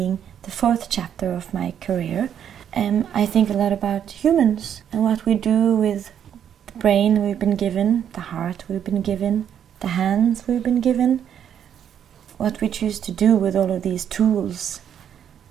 the fourth chapter of my career, I think a lot about humans and what we do with the brain we've been given, the heart we've been given, the hands we've been given, what we choose to do with all of these tools.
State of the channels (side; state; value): left; quieter; 9.1 dB